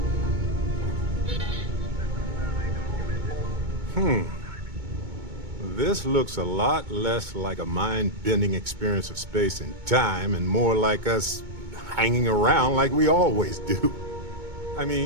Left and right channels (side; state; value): left; late; 2.2 ms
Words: This looks a lot less like a mind-bending experience of space and time and more like us hanging around like we always do. I